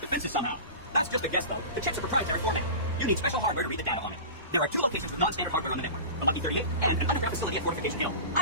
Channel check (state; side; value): inverted; both; correlation -0.32